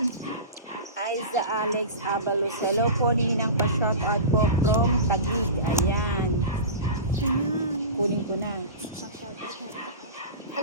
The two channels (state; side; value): inverted; both; correlation -0.30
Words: Aiza Alex Abalos. Hello po, Ninang, pa-shout out po from Taguig. Ayan. Kunin ko na.